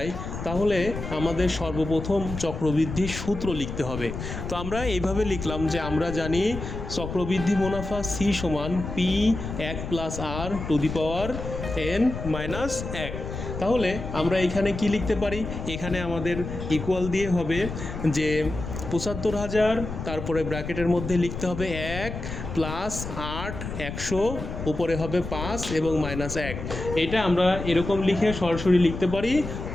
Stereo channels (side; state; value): left; noise; rumble, 7 dB below the sound